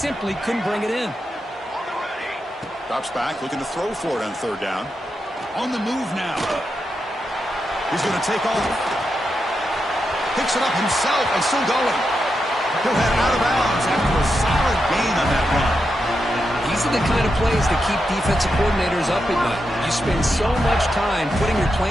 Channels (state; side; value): normal; both; correlation 0.86